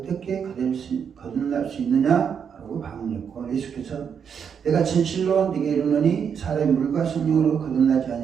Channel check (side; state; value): left; quieter; 7.2 dB